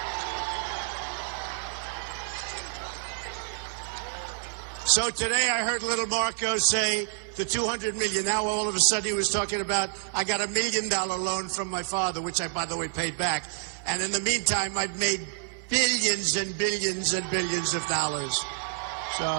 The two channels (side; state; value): left; silent; 55 dB below the other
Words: So today I heard little Marco say the $200 million. Now all of a sudden he was talking about, I got $1 million loan from my father, which I, by the way, paid back. And in the meantime, I've made billions and billions and billions of dollars.